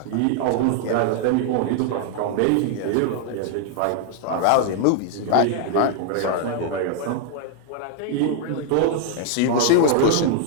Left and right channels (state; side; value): different; both; correlation 0.00